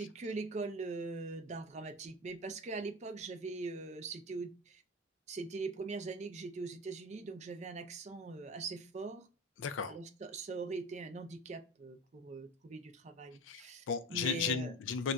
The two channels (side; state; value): both; normal; correlation 0.30